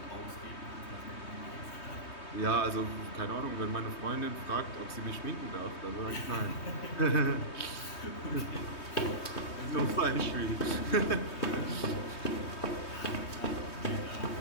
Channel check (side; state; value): right; late; 3.2 ms